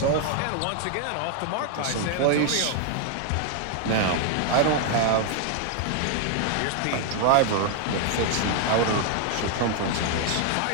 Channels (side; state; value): both; different; correlation 0.00